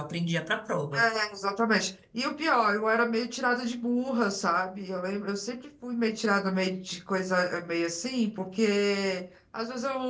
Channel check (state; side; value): identical; both; correlation 1.00